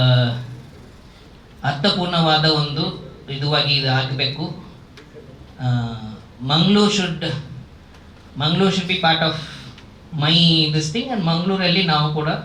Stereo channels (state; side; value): identical; both; correlation 1.00